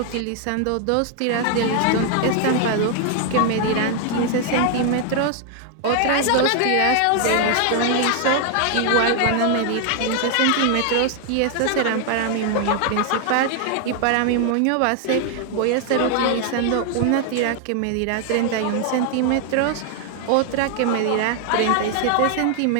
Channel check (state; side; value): different; both; correlation 0.00